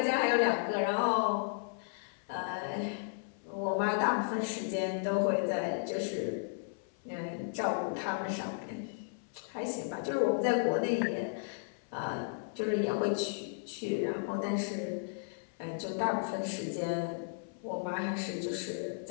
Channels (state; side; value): silent; right; 55 dB below the other